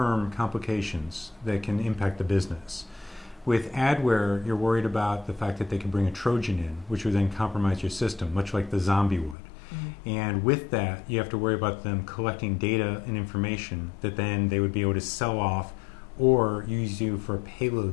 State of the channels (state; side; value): drops out; right; at 9.3 s